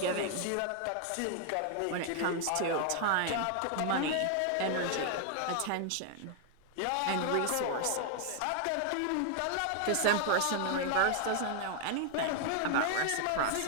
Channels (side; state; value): both; different; correlation 0.00